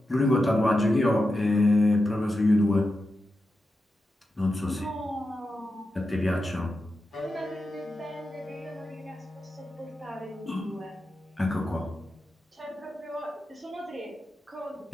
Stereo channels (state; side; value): normal; both; correlation 0.89